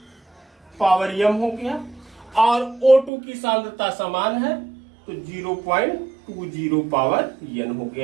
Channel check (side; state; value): left; drops out; at 3.1 s